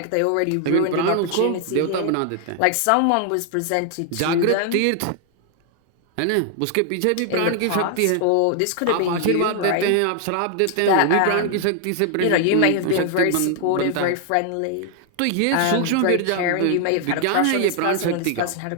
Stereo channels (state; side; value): different; both; correlation 0.00